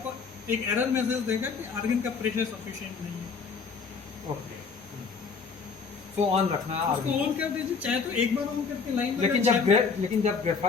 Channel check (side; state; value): right; quieter; 5.4 dB